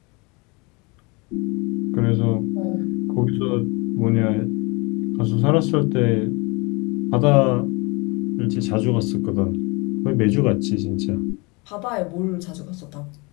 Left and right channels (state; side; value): quieter; right; 27.9 dB